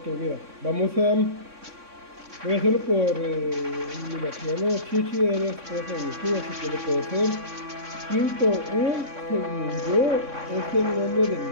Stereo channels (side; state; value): left; late; 3.6 ms